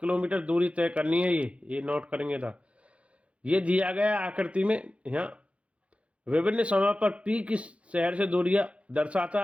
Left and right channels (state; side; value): late; left; 0.062 ms